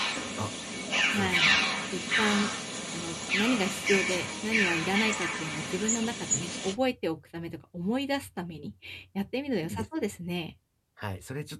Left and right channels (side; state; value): both; identical; correlation 1.00